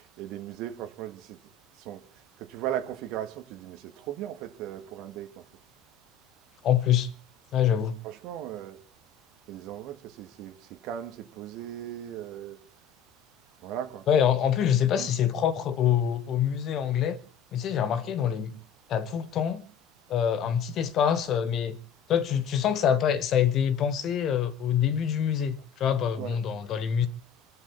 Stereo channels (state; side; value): quieter; right; 7.2 dB